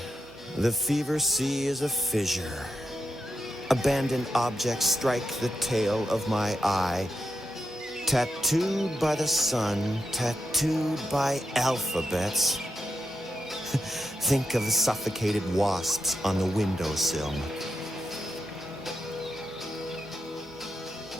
The fever sea is a fissure. Abandoned objects strike the tail of my eye. Tattooed by the sun, tattooed by alphabets. Think of the suffocated wasps on the windowsill.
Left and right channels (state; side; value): normal; both; correlation 0.86